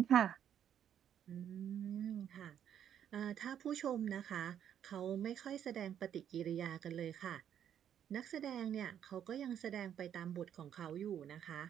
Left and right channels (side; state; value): left; quieter; 9.5 dB